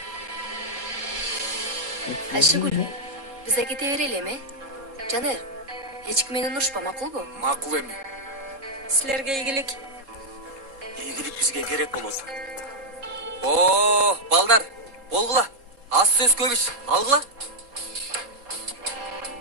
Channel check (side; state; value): left; late; 3.7 ms